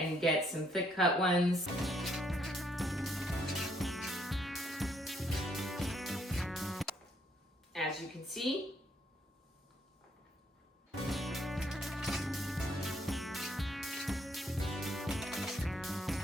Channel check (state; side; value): normal; both; correlation 0.71